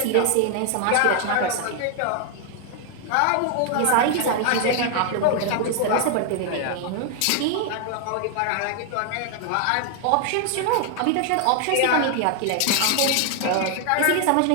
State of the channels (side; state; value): both; different; correlation 0.00